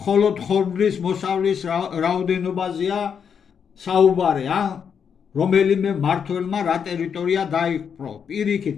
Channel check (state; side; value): quieter; right; 7.2 dB